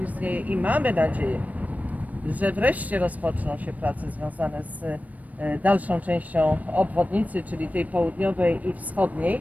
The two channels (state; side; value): late; left; 0.072 ms